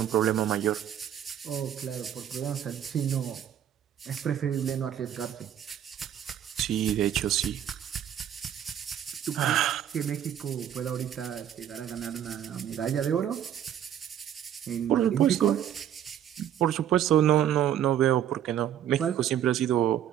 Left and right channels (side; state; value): left; quieter; 10.2 dB